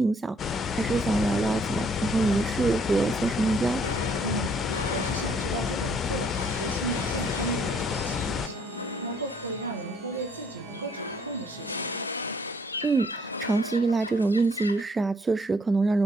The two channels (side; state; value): both; normal; correlation 0.64